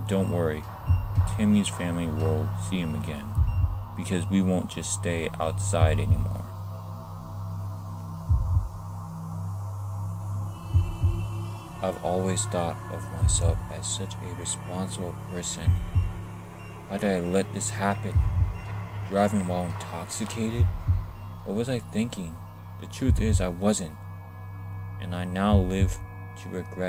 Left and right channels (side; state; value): both; identical; correlation 1.00